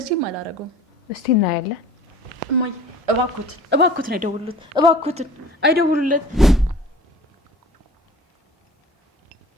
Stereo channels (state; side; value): normal; both; correlation 0.44